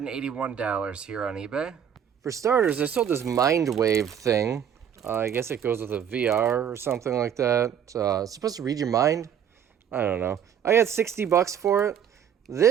here on eBay. For starters, I sold this Mindwave thing. I guess it goes with a VR or something like that. It's supposed to read your mind. I don't know. I got $60 for it.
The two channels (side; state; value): left; quieter; 8.7 dB